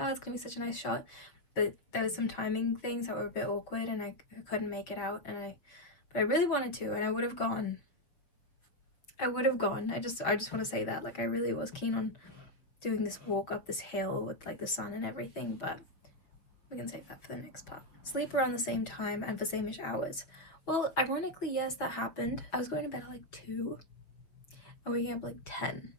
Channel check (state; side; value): late; right; 6.5 ms